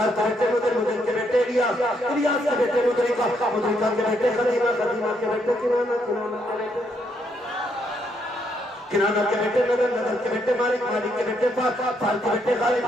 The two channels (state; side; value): normal; both; correlation 0.75